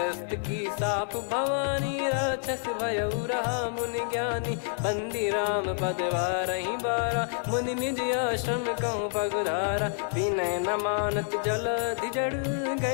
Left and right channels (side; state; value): right; silent; 59 dB below the other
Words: की साप भवानी, राक्षस भयउ रहा मुनि ज्ञानी। बंदी राम पद वारहि बारा, मुनि निज आश्रम कहूँ पगुधारा। विनय न मानत जलधि जड़,